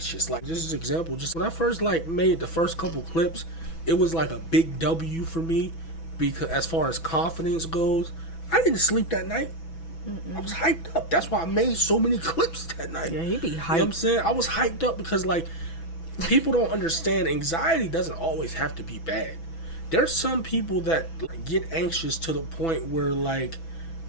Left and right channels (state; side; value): late; right; 6.1 ms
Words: Like, just as an example, just when I first like made the first couple clips, it was like a big W for me because as far as confidence goes, I didn't sleep that night. I was hyped up. That's why I made so many clips that night. Yeah, he be hyped. You know what I'm saying? I was hyped up because, like, people don't understand anxiety doesn't always have to be bad. There's some people that like, get anxious to the point where, like,